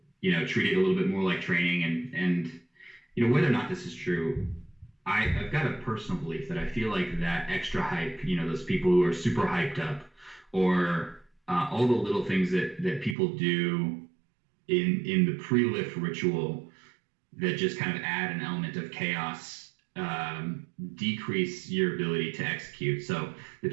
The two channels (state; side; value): drops out; left; at 13.2 s